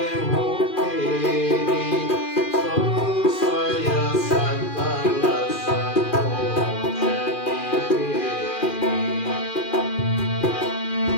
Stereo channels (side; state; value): right; late; 2.4 ms